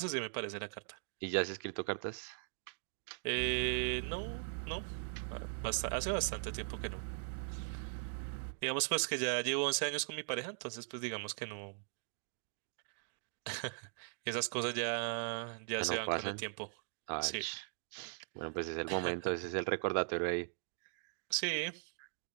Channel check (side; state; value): left; silent; digital silence